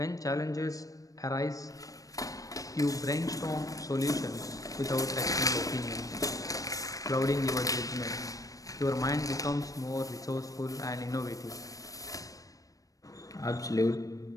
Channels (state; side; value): late; right; 0.16 ms